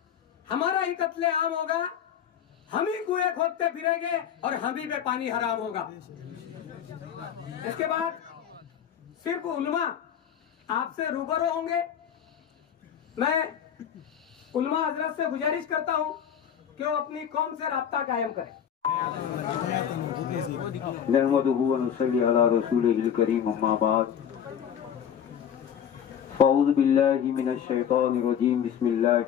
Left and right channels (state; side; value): quieter; right; 8.8 dB